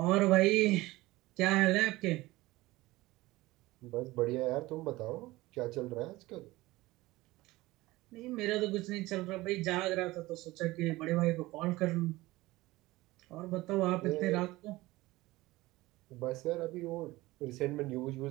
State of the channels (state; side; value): quieter; left; 19.3 dB